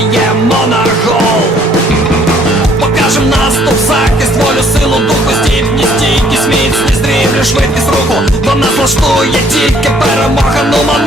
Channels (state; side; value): normal; both; correlation 0.62